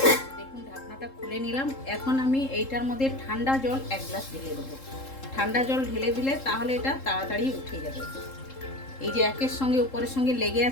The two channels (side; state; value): right; late; 3.7 ms